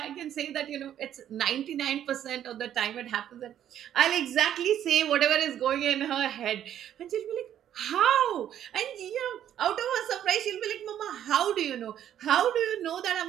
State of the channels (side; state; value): left; quieter; 10.6 dB